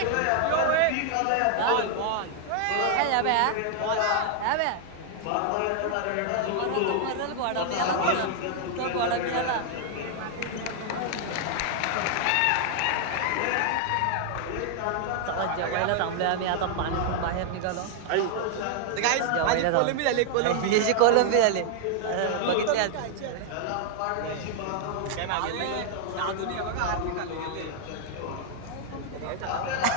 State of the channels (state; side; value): different; both; correlation 0.00